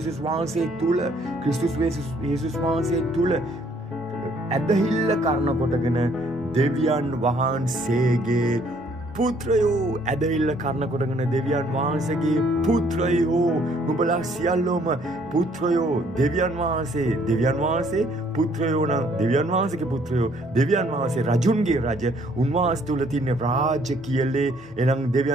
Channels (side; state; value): both; normal; correlation 0.63